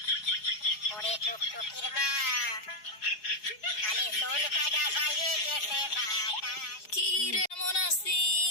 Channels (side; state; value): right; late; 4.8 ms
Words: ওরে টুকটুকির মা। খালি চুল কাটা বাজে গেছে বাতাস। কি রে, মন